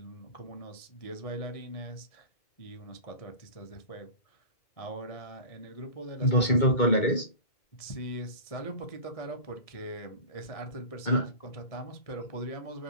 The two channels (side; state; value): right; late; 2.2 ms